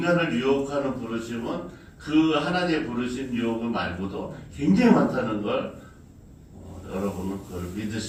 유혹하는 부르심은 그 하나님의 부르심 유혹을 말고도 굉장히 많다는 걸 여러분은 그걸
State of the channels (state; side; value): identical; both; correlation 1.00